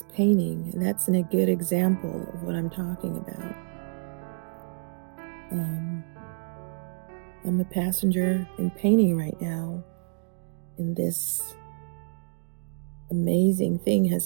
painting, and that's a good example of what I'm talking about. I'm a passenger in painting right now, and this amazing thing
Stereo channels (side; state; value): left; silent; 59 dB below the other